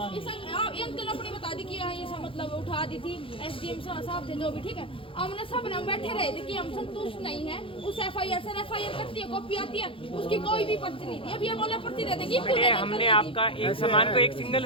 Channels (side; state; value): right; late; 0.26 ms